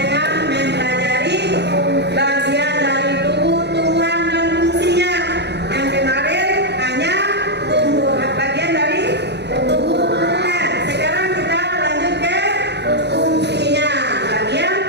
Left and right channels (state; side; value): late; left; 0.49 ms